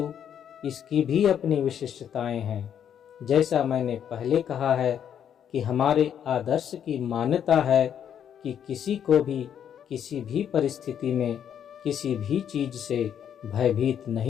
इसकी भी अपनी विशिष्टताएं हैं। जैसा मैंने पहले कहा है कि हमारे आदर्श की मान्यता है कि किसी को भी किसी भी परिस्थिति में किसी भी चीज से भयभीत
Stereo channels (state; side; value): quieter; right; 9.0 dB